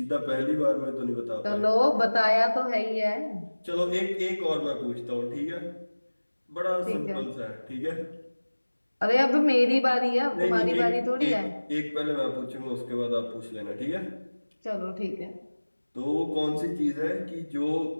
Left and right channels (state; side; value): inverted; both; correlation -1.00